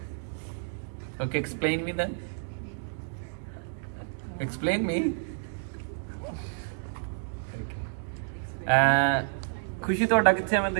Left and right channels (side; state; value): left; silent; digital silence